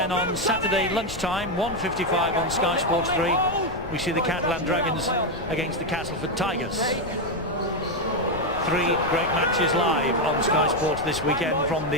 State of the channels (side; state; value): left; noise; rumble, 12 dB below the sound